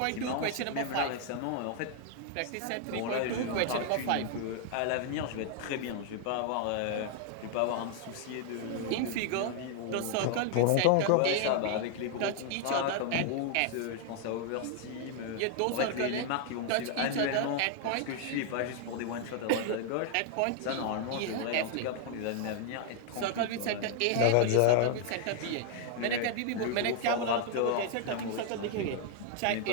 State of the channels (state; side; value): different; both; correlation 0.00